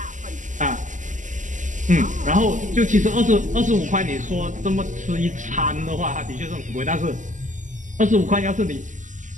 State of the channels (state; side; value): late; left; 0.37 ms